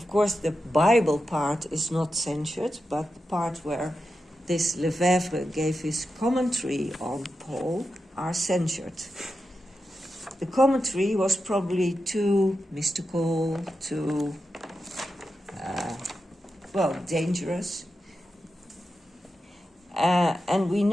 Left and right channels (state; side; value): normal; both; correlation 0.89